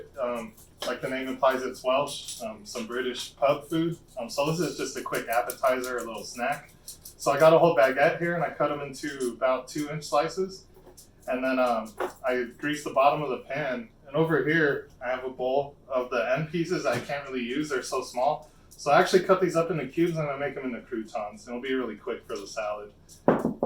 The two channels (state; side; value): identical; both; correlation 1.00